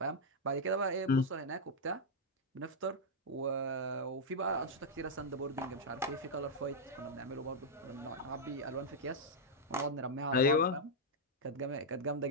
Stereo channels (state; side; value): normal; both; correlation -0.03